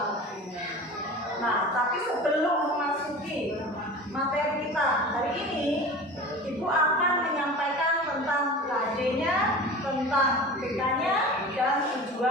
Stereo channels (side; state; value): both; normal; correlation 0.35